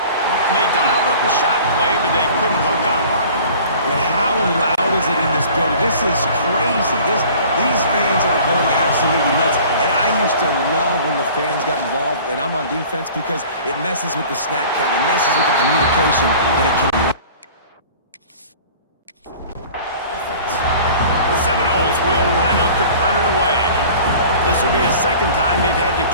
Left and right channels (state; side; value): inverted; both; correlation -0.45